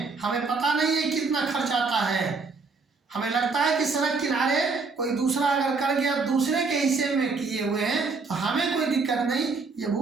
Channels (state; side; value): quieter; left; 4.3 dB